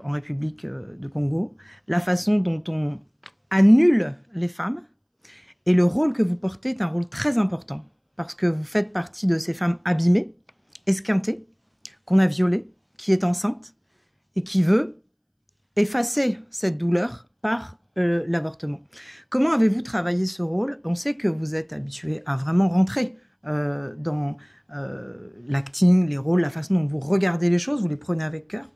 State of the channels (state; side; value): identical; both; correlation 1.00